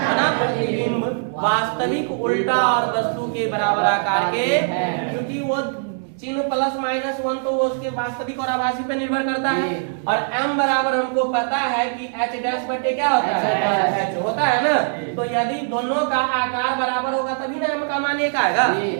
प्रतिबिंब वास्तविक उल्टा और वस्तु के बराबर आकार के, क्योंकि वो चिन्ह +-1 तो वो उसके वास्तविक और आभासी पे निर्भर करता है। और m बराबर हमको पता है कि h' क्या होता है? h होता है ना। तो यदि दोनों का आकार बराबर होगा तभी ना m का मान 1 आएगा।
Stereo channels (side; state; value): left; silent; digital silence